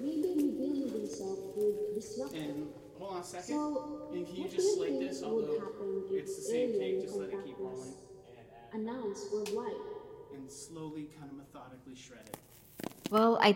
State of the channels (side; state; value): both; identical; correlation 1.00